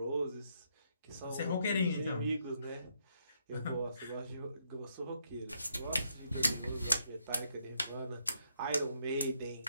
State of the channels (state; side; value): inverted; both; correlation -0.75